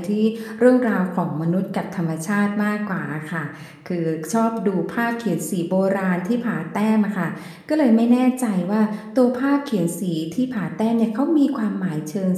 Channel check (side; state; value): both; identical; correlation 1.00